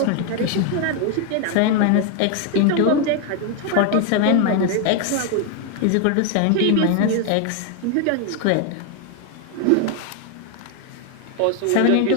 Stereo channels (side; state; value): both; different; correlation 0.01